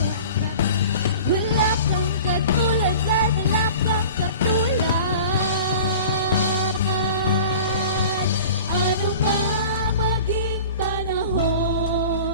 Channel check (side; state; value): both; inverted; correlation -0.41